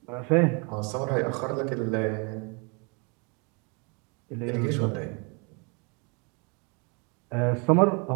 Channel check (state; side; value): quieter; left; 33.1 dB